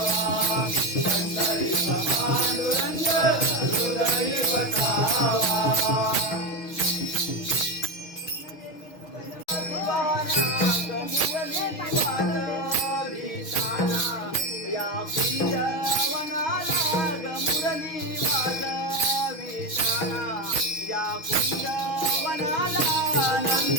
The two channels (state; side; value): late; right; 6.3 ms